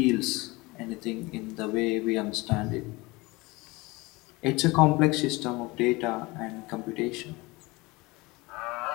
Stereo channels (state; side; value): quieter; right; 23.1 dB